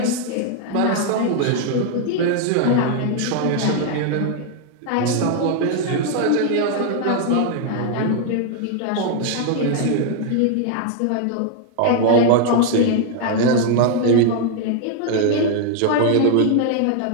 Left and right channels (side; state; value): both; different; correlation 0.00